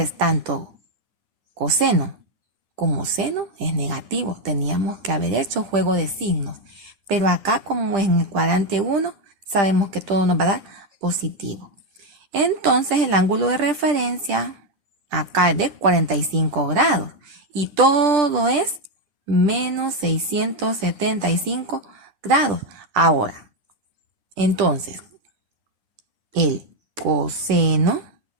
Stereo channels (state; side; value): late; left; 10 ms